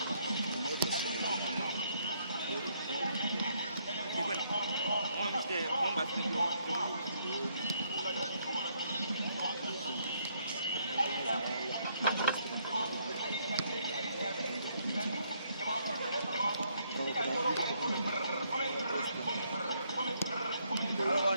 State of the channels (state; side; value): inverted; both; correlation -0.71